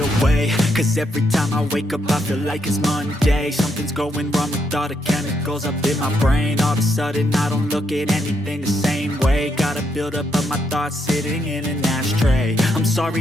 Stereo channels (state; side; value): normal; both; correlation 0.77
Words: away, cause every time I wake up I feel like it's Monday. Something's going wrong with all the chemicals up in my brain. All of a sudden I don't look at anything the same way. Gotta build up of my thoughts sitting in an ashtray. I'm